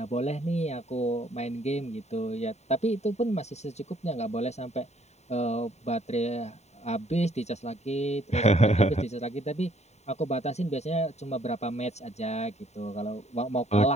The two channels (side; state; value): right; late; 0.32 ms